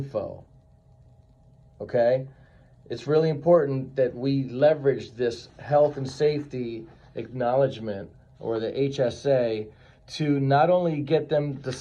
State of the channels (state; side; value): identical; both; correlation 1.00